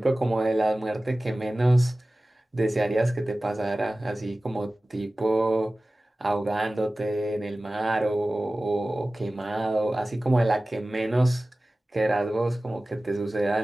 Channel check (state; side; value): normal; both; correlation 0.97